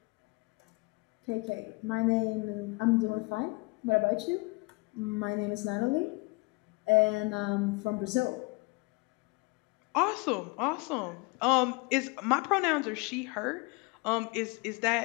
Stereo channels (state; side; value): quieter; right; 27.1 dB